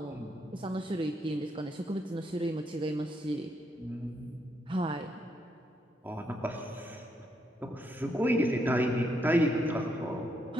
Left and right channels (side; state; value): both; normal; correlation 0.77